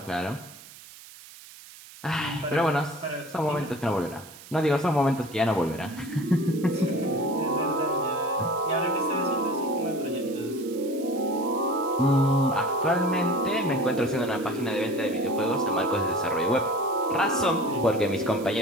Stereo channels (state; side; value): noise; right; hiss, 19 dB below the sound